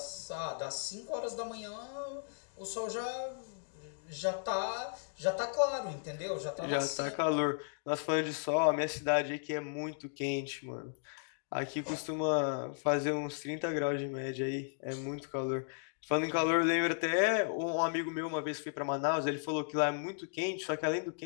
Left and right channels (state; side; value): silent; right; digital silence